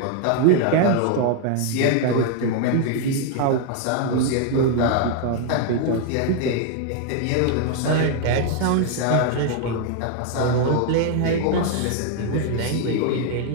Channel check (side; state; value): both; different; correlation 0.00